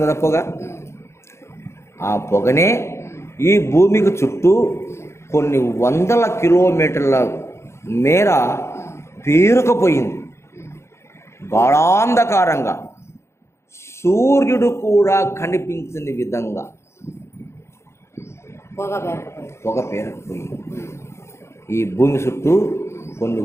కదా పొగ. ఆ పొగనే ఈ భూమికి చుట్టూ కొన్ని వందల కిలోమీటర్ల మేర పేరుకుపోయింది. గాఢాంధకారంగా, సూర్యుడు కూడా కనిపించని విధంగా పొగ పేరుకుపోయింది. ఈ భూమి చుట్టూ కొన్ని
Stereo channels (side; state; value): right; late; 0.13 ms